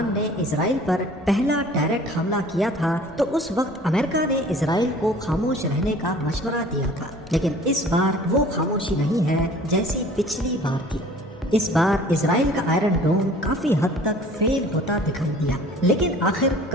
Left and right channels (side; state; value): both; normal; correlation 0.49